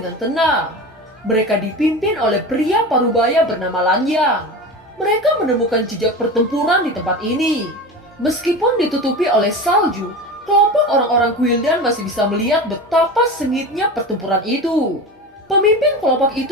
tenang. Mereka dipimpin oleh pria parubaya bernama Lan Yang. Mereka menemukan jejak pertempuran di tempat ini. Meskipun ditutupi oleh salju, kelompok orang-orang Guildan masih bisa melihat betapa sengitnya pertempuran itu. Pemimpin kelompok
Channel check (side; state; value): both; normal; correlation 0.28